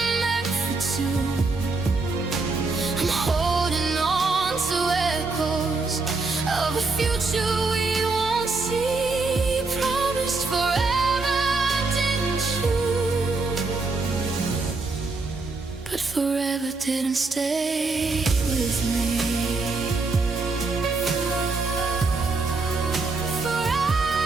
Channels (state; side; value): quieter; left; 3.8 dB